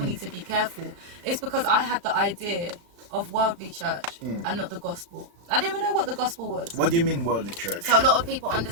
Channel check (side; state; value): left; late; 35 ms